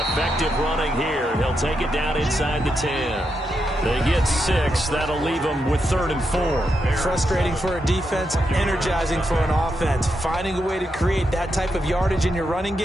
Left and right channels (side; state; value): both; normal; correlation 0.84